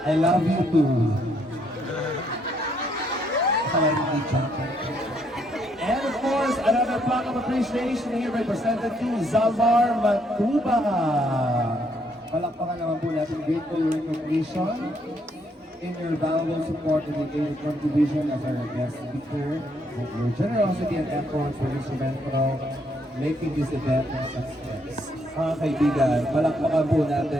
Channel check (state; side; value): normal; both; correlation 0.72